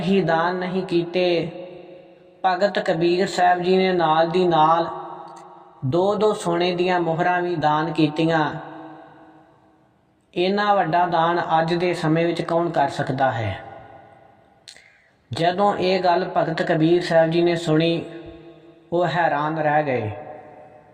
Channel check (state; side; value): identical; both; correlation 1.00